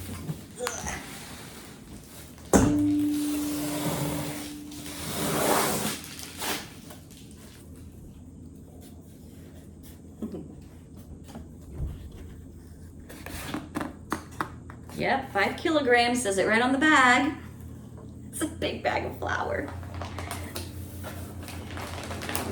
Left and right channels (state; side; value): identical; both; correlation 1.00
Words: Yep, 5 kilograms, says it right on the bag. It's a big bag of flour.